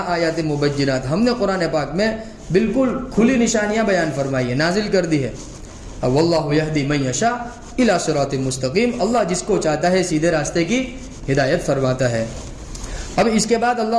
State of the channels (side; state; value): both; identical; correlation 1.00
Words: آيَاتٍ مُبَيِّنَاتٍ. ہم نے قرآن پاک میں بالکل کھلی نشانیاں بیان فرمائی ہیں، نازل کر دی ہے. واللہ یہدی من یشاء الی صراط مستقیم. اللہ جس کو چاہتا ہے سیدھے راستے کی ہدایت فرماتا ہے. اب اس کے بعد